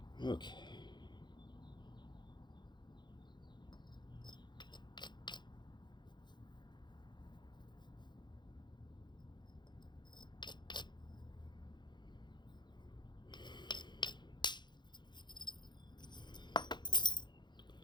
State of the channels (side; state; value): right; late; 0.21 ms